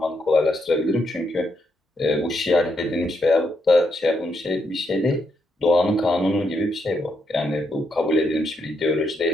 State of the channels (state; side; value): normal; both; correlation 0.79